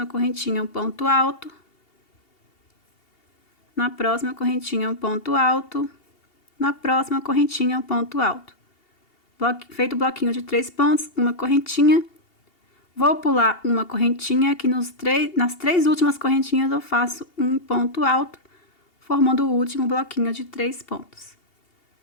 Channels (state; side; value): late; right; 2.8 ms